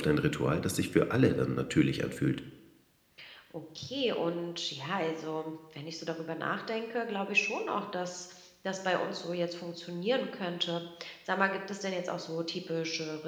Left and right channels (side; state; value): both; identical; correlation 1.00